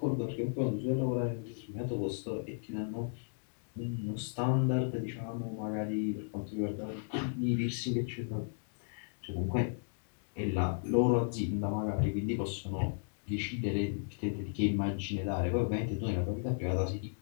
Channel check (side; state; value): right; silent; digital silence